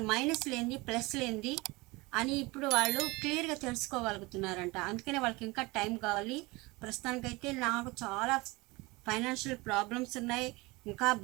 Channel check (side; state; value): left; quieter; 23.5 dB